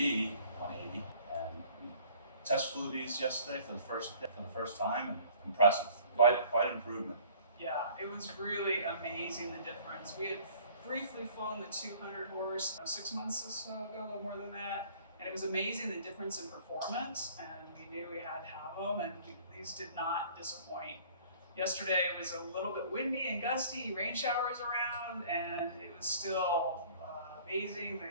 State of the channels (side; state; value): both; inverted; correlation -0.52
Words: 180, and we test flew these yesterday for the first time, and impressive. Quite improvement. Yeah, it was really amazing the difference. We had briefly flown the 200 horse 6 months or so ago, a little more than that, and it was amazing the difference in performance. And we knew we had to have them, and these did not disappoint. Yesterday it was a little bit windy and gusty, rain showers around, and it was still amazing.